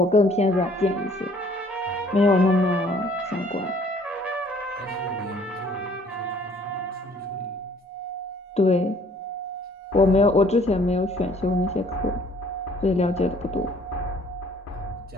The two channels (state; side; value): normal; both; correlation 0.58